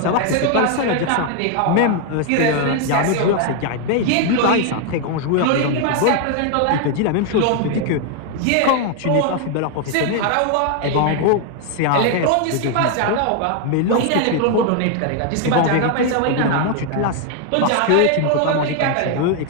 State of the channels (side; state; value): both; different; correlation 0.01